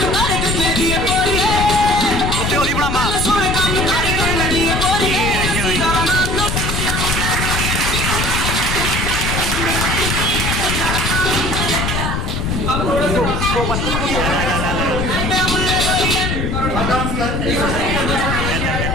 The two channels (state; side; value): noise; left; rumble, 1 dB below the sound